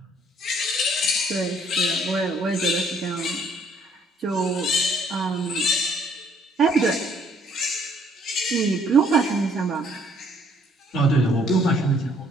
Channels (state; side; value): normal; both; correlation 0.64